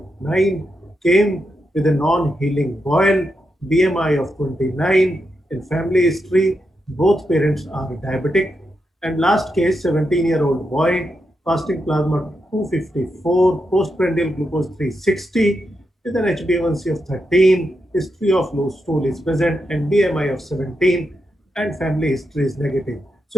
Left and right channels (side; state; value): both; normal; correlation 0.85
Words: came with a non-healing boil, BMI of 29, in family history, Both parents are diabetic. And last case, 17-year-old boy, fasting plasma 254, postprandial glucose 360, with an HbA1c of 13, history of low stool is present, and BMI of 17, and family history is negative.